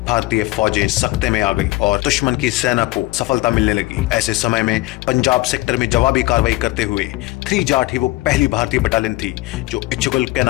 भारतीय फौजें सख्ते में आ गई और दुश्मन की सेना को सफलता मिलने लगी। ऐसे समय में पंजाब सेक्टर में जवाबी कार्रवाई करते हुए 3 जाट ही वो पहली भारतीय बटालियन थी जो इच्छुगल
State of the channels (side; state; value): right; quieter; 19.8 dB